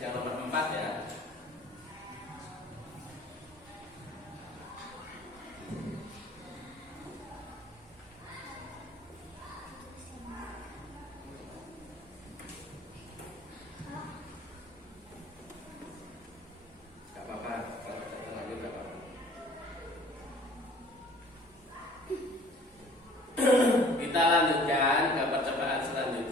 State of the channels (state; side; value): normal; both; correlation 0.51